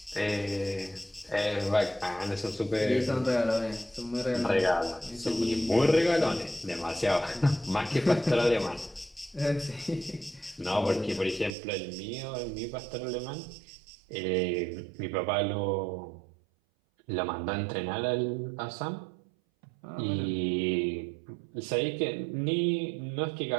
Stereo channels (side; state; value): left; drops out; at 11.6 s